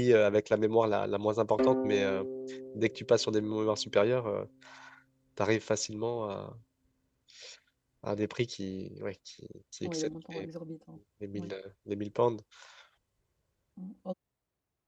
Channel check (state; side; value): identical; both; correlation 1.00